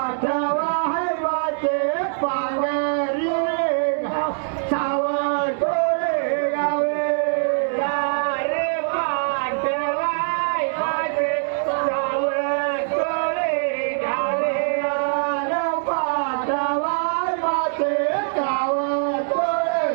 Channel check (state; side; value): silent; left; 64 dB below the other